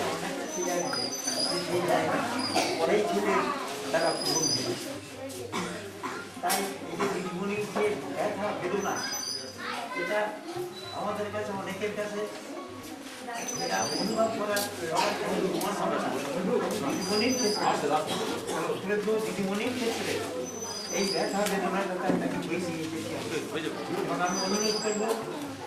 অনেকটা ছিল সেই জায়গা পরেই ছিল তারা পূরণ হয়ে। তাই এই যে দিদিমণির যে ব্যথা বেদনা, এটা আমাদের কাছে অনেকের কাছে এটা অনুভব করার দিদিমণির ক্ষেত্রে, দিদিমণির ক্ষেত্রে এই ব্যথা বেদনার কথা তাকে বেশি আমি অনুরোধ করবো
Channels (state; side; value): identical; both; correlation 1.00